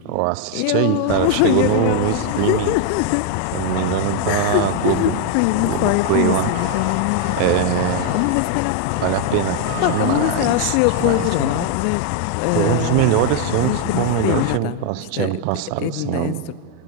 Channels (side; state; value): both; different; correlation 0.00